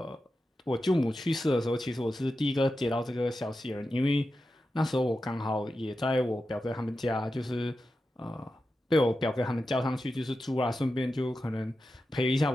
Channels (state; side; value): normal; both; correlation 0.91